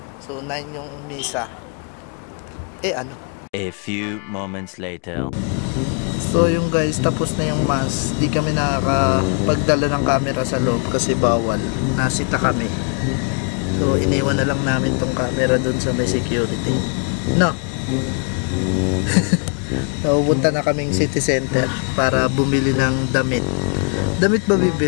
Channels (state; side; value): quieter; right; 39.4 dB